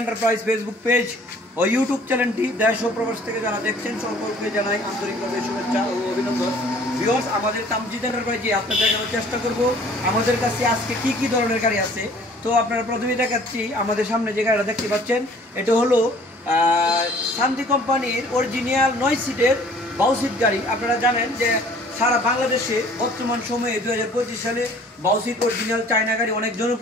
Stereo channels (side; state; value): both; normal; correlation 0.53